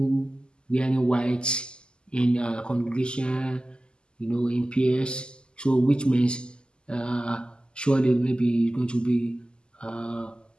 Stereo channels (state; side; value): late; right; 0.048 ms